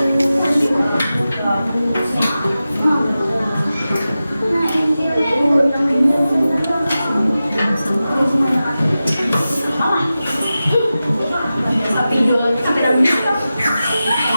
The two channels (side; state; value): both; inverted; correlation -0.94